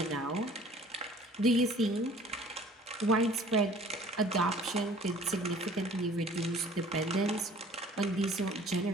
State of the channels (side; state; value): both; normal; correlation 0.50